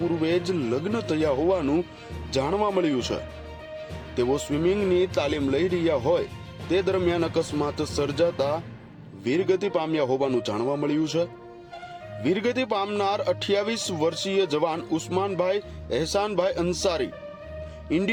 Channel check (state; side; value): identical; both; correlation 1.00